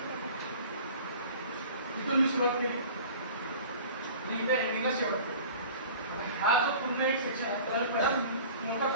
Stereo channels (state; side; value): inverted; both; correlation -0.43